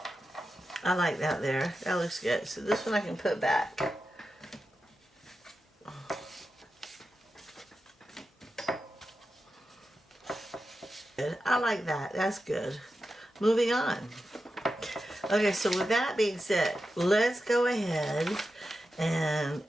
I like that there. That looks good. So this one I can put back. Good. I like that. That's good. Moving on. Okay, so with that being said, let's go ahead and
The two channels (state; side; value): normal; both; correlation 0.90